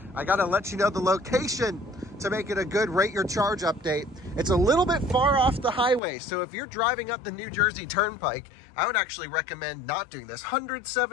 I gotta let you know the location to make it a good rate your charge update. It's a little bit far off the highway, so if you're driving up the New Jersey Turnpike, I would actually recommend not doing this.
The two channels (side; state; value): right; drops out; at 6.0 s